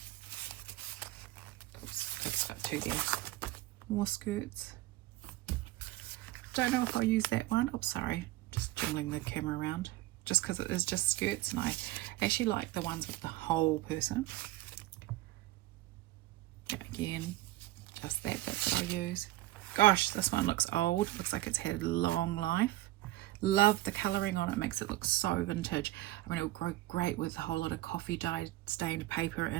Oops, I've stuck two there. More skirts. Don't know if I'll use that one. Oops, sorry, just jiggling the camera around. Just because it is just skirts, and I actually like the ones with the whole person. Yeah, again, just that bit that I'll use. Gosh, this one looks old. Looks like it's had a long life. Love the colouring on it. Makes it look so vintage. I mean, it'll grow great with a whole lot of coffee dye stained paper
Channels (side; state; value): left; quieter; 17.0 dB